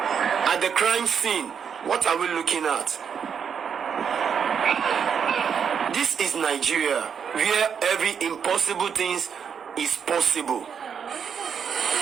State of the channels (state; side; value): quieter; left; 7.1 dB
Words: at the crime scene. What are we looking at? This is Nigeria, where every impossible thing is possible.